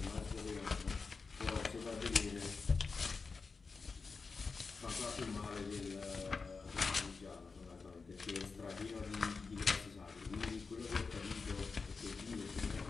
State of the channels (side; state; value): right; quieter; 4.6 dB